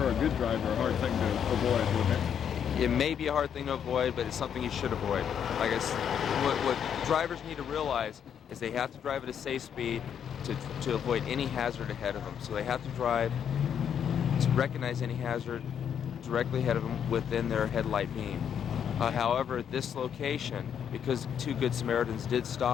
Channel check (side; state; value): right; quieter; 8.4 dB